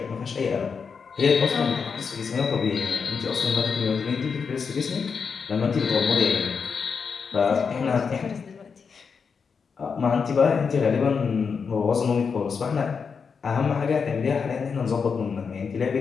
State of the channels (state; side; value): quieter; right; 5.8 dB